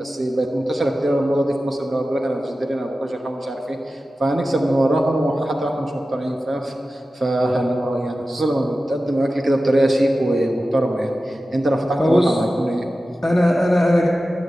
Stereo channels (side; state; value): both; normal; correlation 0.94